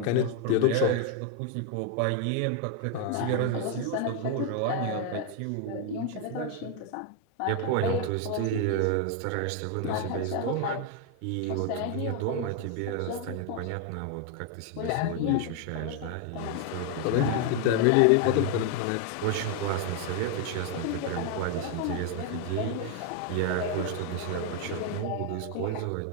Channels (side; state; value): both; different; correlation 0.01